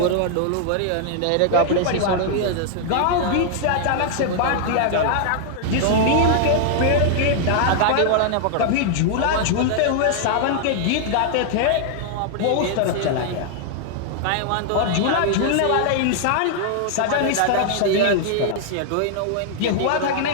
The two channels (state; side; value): different; both; correlation -0.01